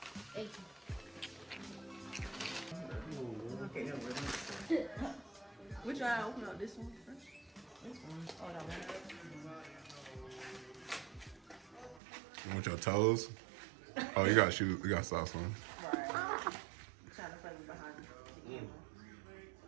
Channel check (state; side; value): drops out; left; at 12.0 s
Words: Thank Okay, no, we're Which one? I open up this one first. this one. Oh, that one. You want your toes? Oh, you got shoes. You got socks on. Right. Trying to play me behind you.